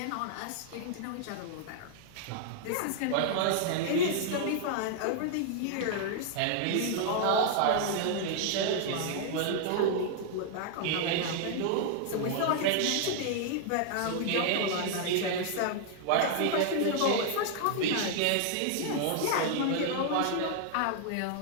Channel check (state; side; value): different; both; correlation 0.00